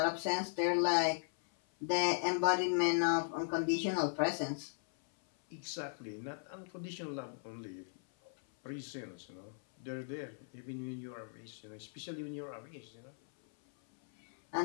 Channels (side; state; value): right; silent; 53 dB below the other